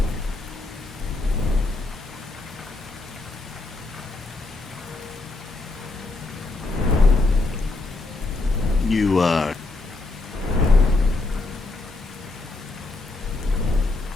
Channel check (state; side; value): quieter; right; 3.2 dB